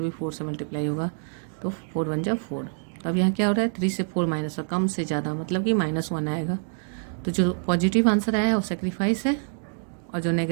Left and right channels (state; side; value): silent; left; digital silence